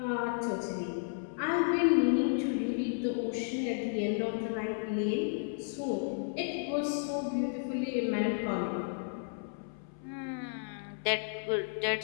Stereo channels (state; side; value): silent; right; 56 dB below the other